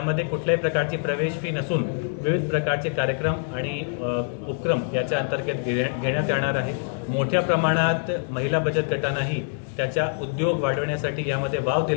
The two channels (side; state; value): right; silent; 62 dB below the other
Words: कुठल्याही प्रकारची प्रवेश फी नसून विविध प्रकारचे कार्यक्रम आणि उपक्रम याच्या अंतर्गत घेण्यात येणार आहे। मोठ्या प्रमाणात महिला बचत गटांनाही त्याचा उद्योग वाढवण्यासाठी यामध्ये वाव